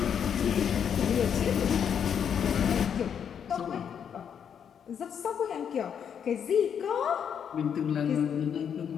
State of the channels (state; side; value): quieter; right; 8.0 dB